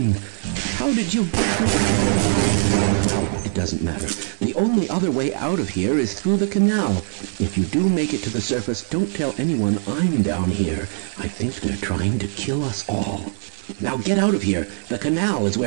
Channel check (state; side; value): silent; left; 64 dB below the other